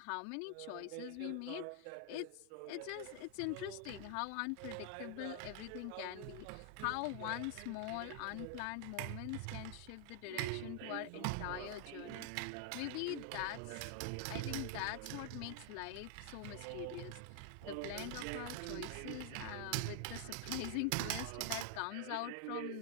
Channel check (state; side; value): different; both; correlation 0.00